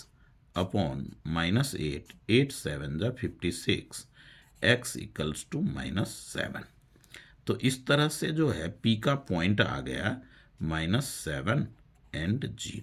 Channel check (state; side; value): identical; both; correlation 1.00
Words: अपॉन -8 8 7 जा 56, x इक्वल्स टू -7। तो इस तरह से जो है p का पॉइंट आ गया -7 एंड